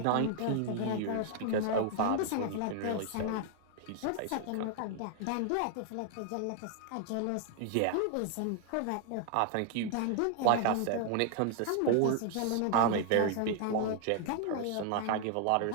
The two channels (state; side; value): different; both; correlation 0.00